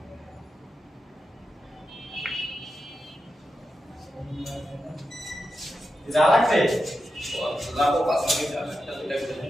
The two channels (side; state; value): both; normal; correlation 0.89